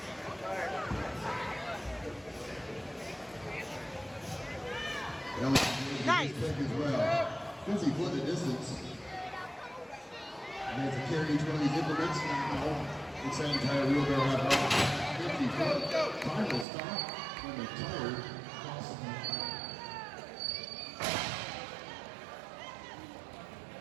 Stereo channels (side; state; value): left; drops out; at 16.7 s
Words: Nice. As well. Since he put the distance, and to carry each one of these implements, it's that entire wheelbarrow apparatus. 50 foot. Final stop when the tire crosses the